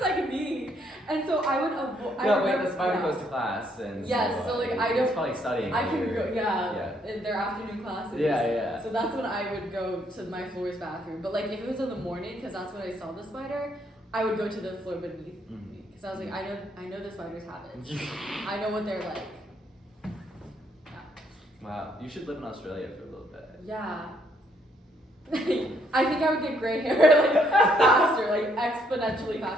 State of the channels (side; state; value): both; normal; correlation 0.70